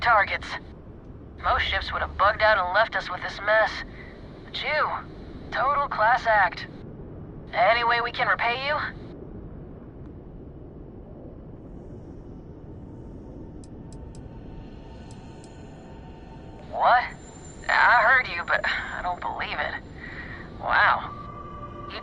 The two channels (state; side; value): identical; both; correlation 1.00